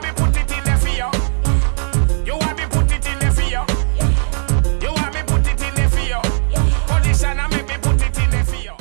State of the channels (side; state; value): left; silent; 68 dB below the other